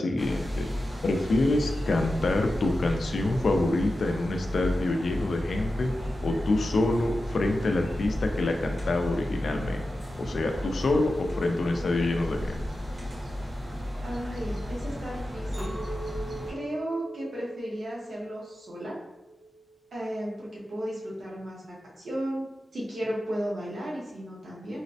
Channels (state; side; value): normal; both; correlation 0.92